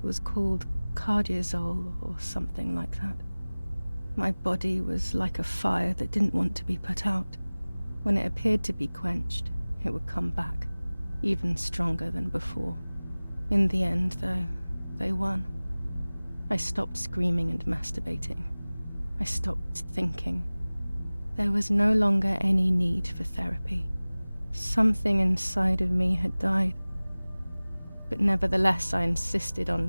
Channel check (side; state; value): both; inverted; correlation -0.99